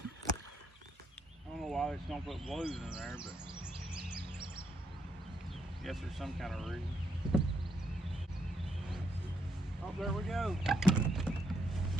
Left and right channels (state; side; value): normal; both; correlation 0.76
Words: I don't know why they just don't put blues in there, but I guess there's some kind of reason. Oh, there we go.